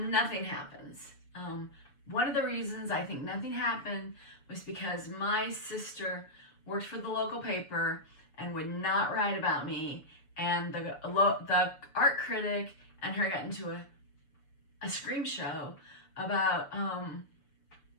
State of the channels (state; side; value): late; right; 6.8 ms